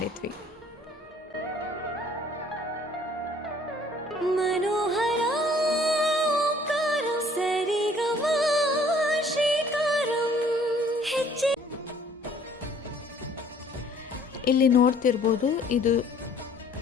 ಮನೋಹರ ಸರಿಗಮ ಶ್ರೀಕಾರಂ ಹೆಜ್ಜೆ. ಇಲ್ಲಿ ನೋಡ್ತಿರ್ಬೋದು, ಇದು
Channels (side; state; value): both; normal; correlation 0.57